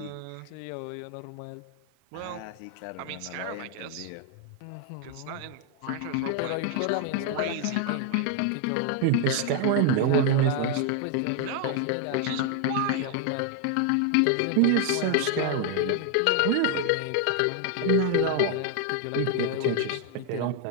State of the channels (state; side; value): different; both; correlation 0.00